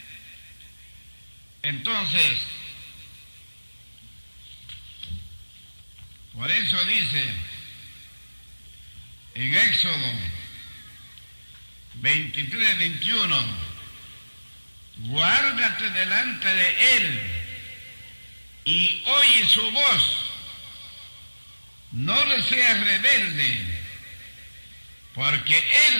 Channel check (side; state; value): both; inverted; correlation -1.00